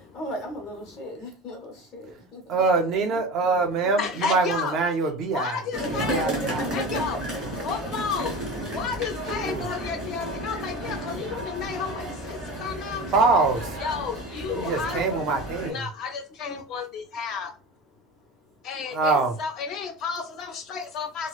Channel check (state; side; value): normal; both; correlation 0.31